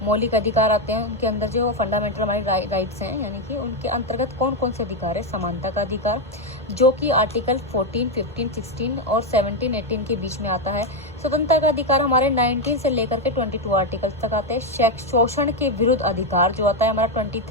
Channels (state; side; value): normal; both; correlation 0.05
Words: मौलिक अधिकार आते हैं, उनके अंदर जो फंडामेंटल हमारी राइट्स हैं, यानी कि उनके अंतर्गत कौन कौन से अधिकार है। समानता का अधिकार जो कि आर्टिकल 14, 15, 16 और 17, 18 के बीच में आता है। स्वतंत्रता का अधिकार हमारे 19 से लेकर के 22 आर्टिकल तक आते हैं। शोषण के विरुद्ध अधिकार जो आता है हमारा